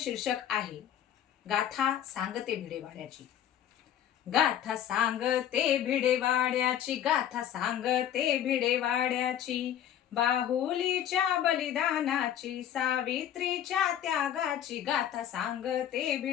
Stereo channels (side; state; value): right; quieter; 10.4 dB